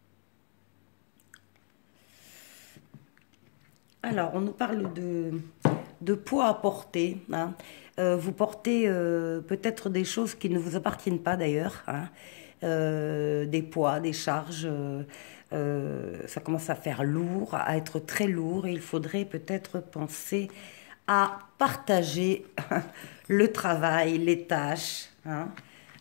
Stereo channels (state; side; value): silent; right; digital silence